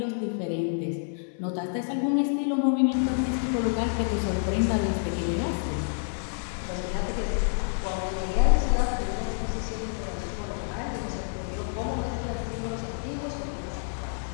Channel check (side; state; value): right; silent; 59 dB below the other